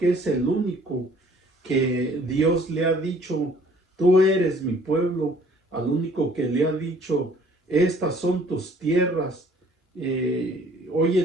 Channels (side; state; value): both; normal; correlation 0.57